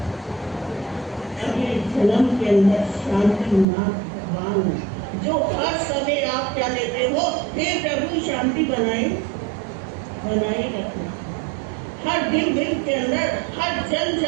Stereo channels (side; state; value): left; drops out; at 3.7 s